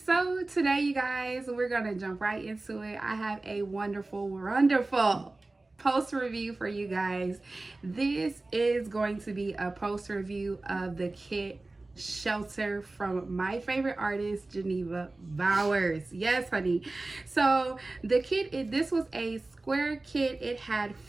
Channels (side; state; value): left; quieter; 3.1 dB